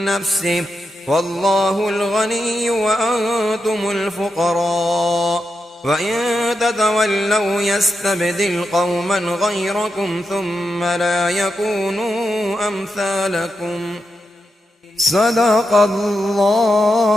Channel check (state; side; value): normal; both; correlation 0.86